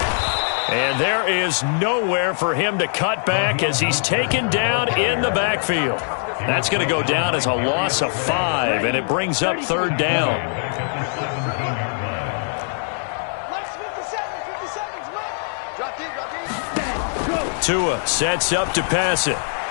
And there is nowhere for him to cut back as he's taken down in the backfield. That's going to go down as a loss of 5, and it brings up third down. Tua sets up to pass it.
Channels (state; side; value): silent; right; digital silence